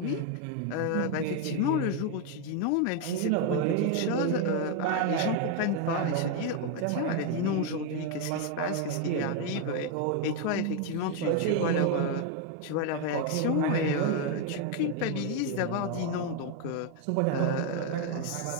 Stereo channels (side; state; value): both; different; correlation 0.01